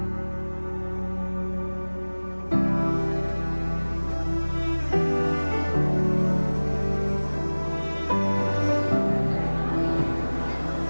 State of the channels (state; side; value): inverted; both; correlation -1.00